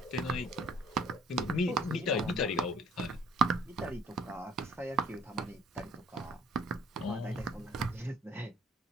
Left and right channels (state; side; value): normal; both; correlation 0.59